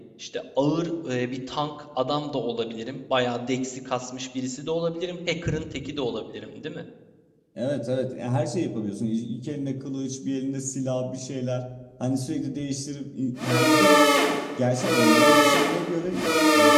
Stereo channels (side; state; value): both; identical; correlation 1.00